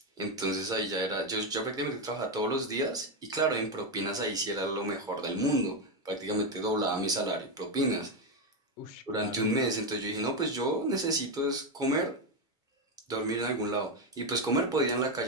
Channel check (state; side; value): normal; both; correlation 0.08